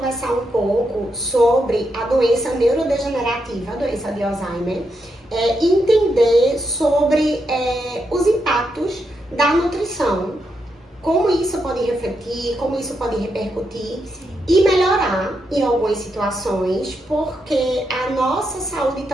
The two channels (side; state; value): both; normal; correlation 0.83